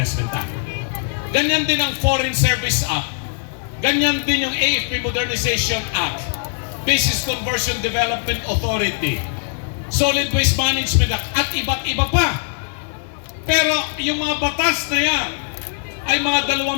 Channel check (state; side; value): silent; right; digital silence